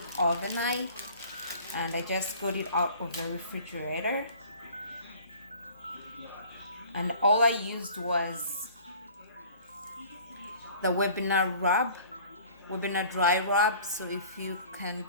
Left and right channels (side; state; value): both; inverted; correlation -0.48